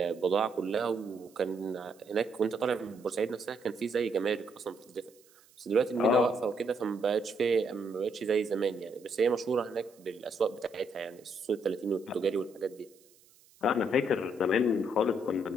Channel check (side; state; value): right; noise; hiss, 29 dB below the sound